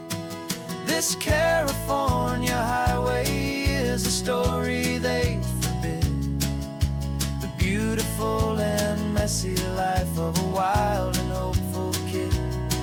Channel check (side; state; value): both; identical; correlation 1.00